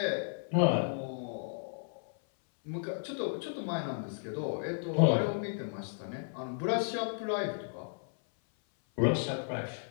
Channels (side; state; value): right; silent; 55 dB below the other